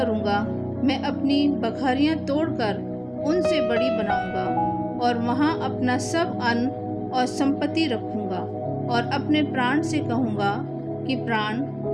मैं अपनी बखरियाँ तोड़कर उनसे बड़ी बनाऊंगा और वहाँ अपना सब अन्न और संपत्ति रखूंगा, और अपने प्राण से कहूँगा कि प्राण,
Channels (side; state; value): both; identical; correlation 1.00